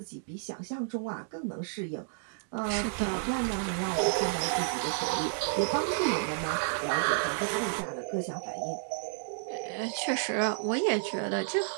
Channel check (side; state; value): left; silent; digital silence